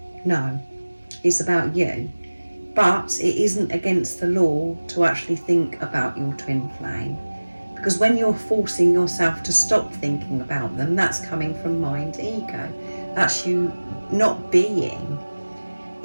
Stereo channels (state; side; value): inverted; both; correlation -1.00